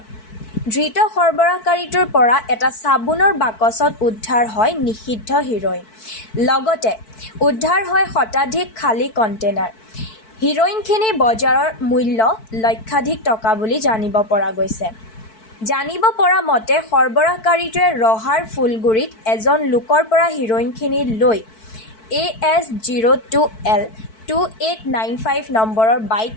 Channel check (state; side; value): late; right; 4.6 ms